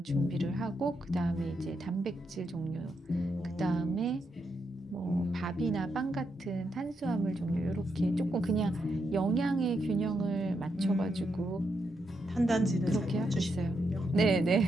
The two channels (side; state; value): both; normal; correlation 0.82